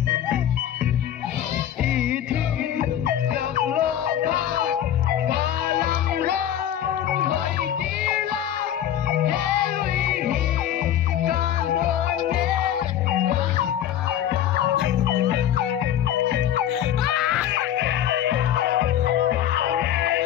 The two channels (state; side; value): quieter; right; 10.9 dB